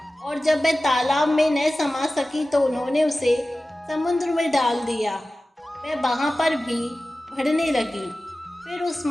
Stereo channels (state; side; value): normal; both; correlation 0.96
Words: और जब वह तालाब में न समा सकी तो उन्होंने उसे समुद्र में डाल दिया। वह वहाँ पर भी बढ़ने लगी। फिर उस